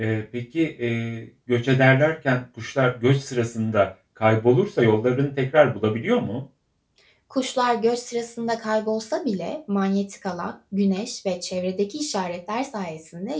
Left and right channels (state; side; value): identical; both; correlation 1.00